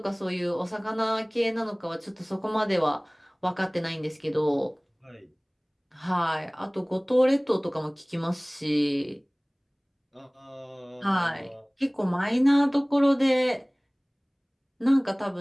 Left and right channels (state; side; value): identical; both; correlation 1.00